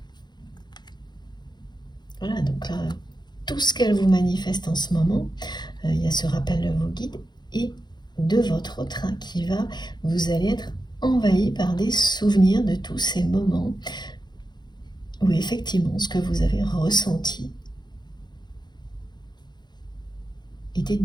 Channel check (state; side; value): late; right; 0.21 ms